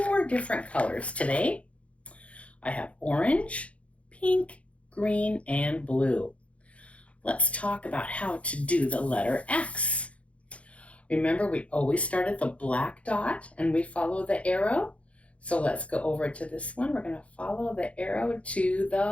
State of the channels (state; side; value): late; right; 0.063 ms